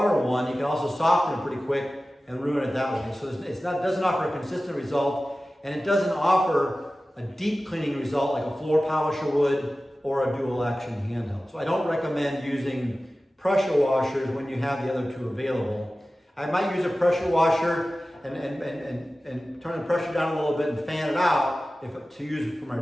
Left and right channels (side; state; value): both; normal; correlation 0.96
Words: one, you can also soften it pretty quick and ruin it that way. So it doesn't offer a consistent result, and it doesn't offer a deep cleaning result like a floor polisher would or a dual action handheld. So I don't recommend using pressure washers when you have the other two available. I might use a pressure washer and turn the pressure down a little bit and fan it out to use it for my